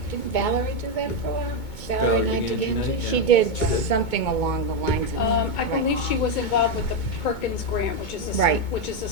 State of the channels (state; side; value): late; right; 2.2 ms